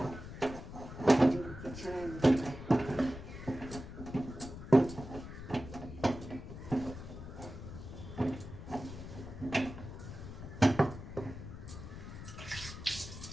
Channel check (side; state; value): left; noise; rumble, 11 dB below the sound